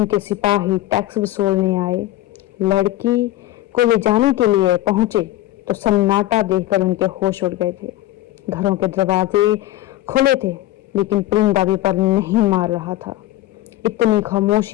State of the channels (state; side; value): quieter; right; 15.1 dB